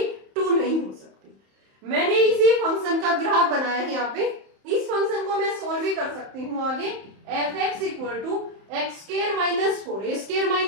2 नहीं हो सकती। मैंने इसी फंक्शन का ग्राफ बनाया है यहाँ पे। इस फंक्शन को मैं सोल्व भी कर सकती हूँ आगे। f(x = x² - 4, a²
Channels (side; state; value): left; late; 31 ms